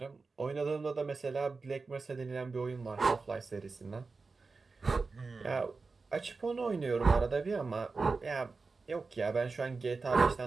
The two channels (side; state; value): left; quieter; 4.2 dB